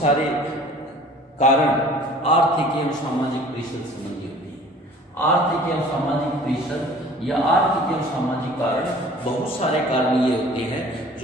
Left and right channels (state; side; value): normal; both; correlation 0.48